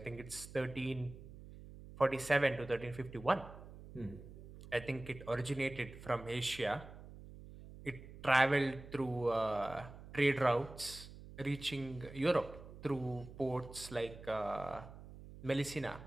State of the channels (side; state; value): right; noise; hum, 15 dB below the sound